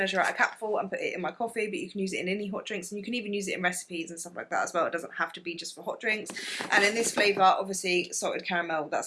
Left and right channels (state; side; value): identical; both; correlation 1.00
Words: out a capful and put it in my coffee, but you can use it in any hot drinks and you can even use it in recipes and stuff like that as well. It doesn't have to be just for hot drinks. And in this flavour, obviously salted caramel,